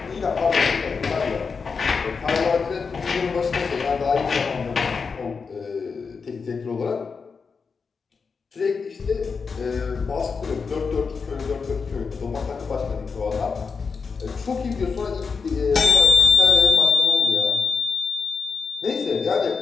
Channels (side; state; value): right; quieter; 5.2 dB